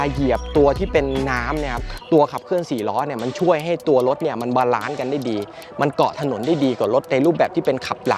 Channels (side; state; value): both; identical; correlation 1.00